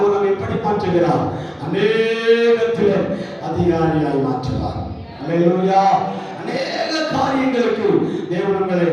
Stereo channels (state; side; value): identical; both; correlation 1.00